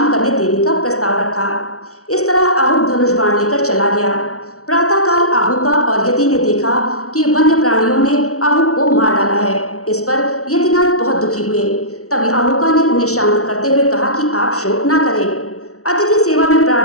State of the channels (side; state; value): right; late; 0.65 ms